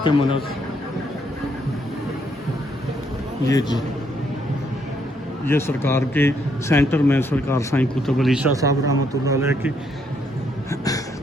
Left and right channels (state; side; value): normal; both; correlation 0.72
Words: के मनस, ये जी ये सरकार के सेंटर में सरकार साईं कुतुब अली शाह साहब रहमतुल्लाह अलैह की